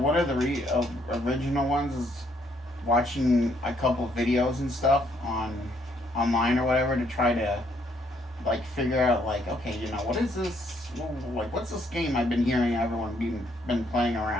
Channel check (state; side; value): normal; both; correlation 0.70